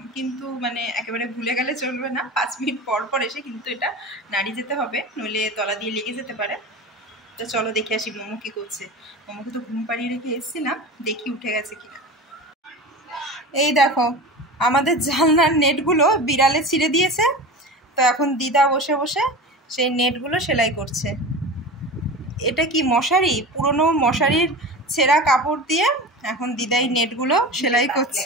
কিন্তু মানে একেবারে ভুলে গেলে চলবে না, 5 মিনিট পর পর এসে কিন্তু এটা নাড়িয়ে যেতে হবে, নইলে তলা দিয়ে লেগে যেতে পারে। তো চলো দেখে আসি মোমো কি করছে। মোমোকে তো ঘুম পাড়িয়ে রেখে এসেছিলাম, দেখি উঠে গেছে কিনা। এই দেখো আমাদের জানলার নেটগুলো বিড়ালে ছিঁড়ে দিয়েছে, তো এখন দিদা বসে বসে সেই নেটগুলো সেলাই করছে। এটা কি মশারি, পুরনো মশারির ছেঁড়া কাপড় দিয়ে এখন দিদাই নেটগুলো সেলাই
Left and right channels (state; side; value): normal; both; correlation 0.31